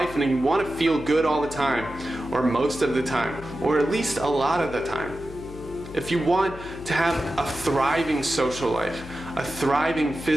and you want to feel good all the time, or most of the time, or at least a lot of the time, if you want to have a thriving social life, a thriving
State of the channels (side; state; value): left; noise; hum, 14 dB below the sound